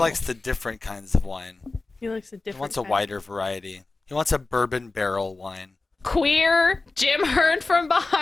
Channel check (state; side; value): quieter; right; 3.5 dB